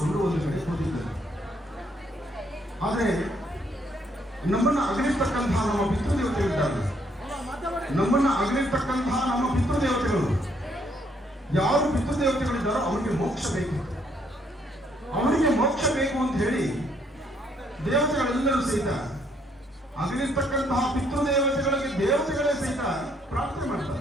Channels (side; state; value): both; normal; correlation 0.69